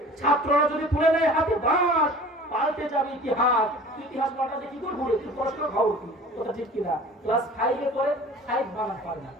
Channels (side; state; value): both; normal; correlation 0.44